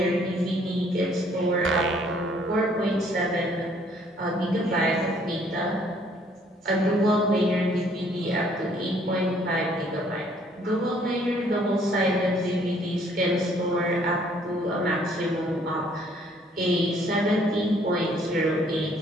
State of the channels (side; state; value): both; normal; correlation 0.62